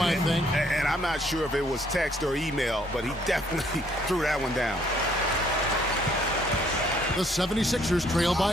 I think. And I'm not sure if it was text or email, but he definitely threw that one down. The 76ers trail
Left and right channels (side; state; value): both; normal; correlation 0.65